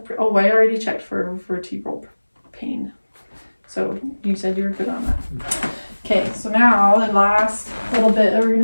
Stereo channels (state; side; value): inverted; both; correlation -1.00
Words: Oh, I already checked for vertebral pain. So you said you were good on that. Okay, so now the last little bit that we're